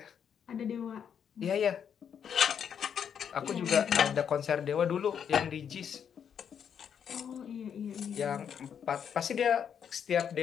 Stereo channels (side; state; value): right; quieter; 8.0 dB